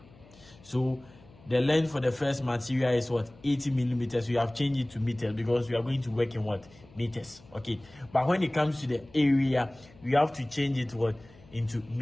So the length for the first material is 80 millimeters. We have changed it to meters because we are going to work in meters, okay. But when it comes to the area, we have to change it into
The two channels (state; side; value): noise; left; hum, 25 dB below the sound